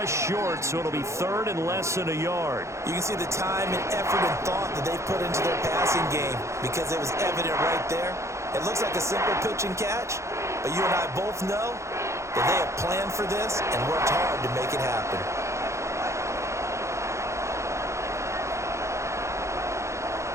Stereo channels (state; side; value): late; left; 0.14 ms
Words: short, so it'll be 3rd and less than a yard. You can see the time and effort and thought that they put into their passing game because it was evident right there. It looks like a simple pitch and catch, but you and I both know that they have planned for this and worked hard to make it happen.